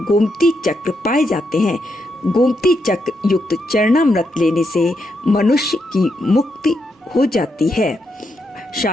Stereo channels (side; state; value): both; normal; correlation 0.81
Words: गोमती चक्र पाए जाते हैं। गोमती चक्र युक्त चरणामृत लेने से मनुष्य की मुक्ति हो जाती है।